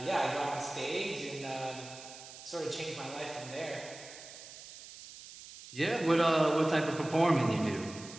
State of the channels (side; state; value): right; noise; hiss, 15 dB below the sound